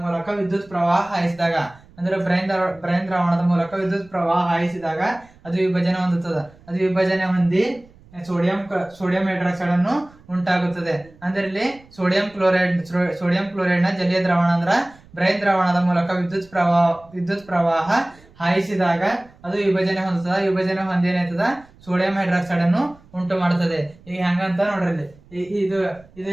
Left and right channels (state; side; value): noise; right; rumble, 26 dB below the sound